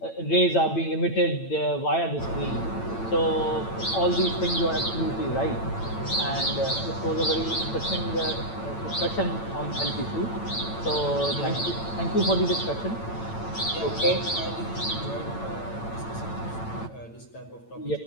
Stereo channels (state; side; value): late; right; 8.9 ms